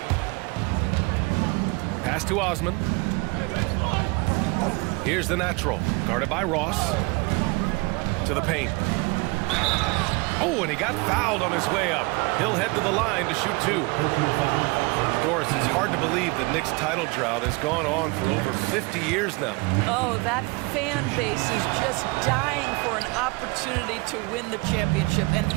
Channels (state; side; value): quieter; left; 26.8 dB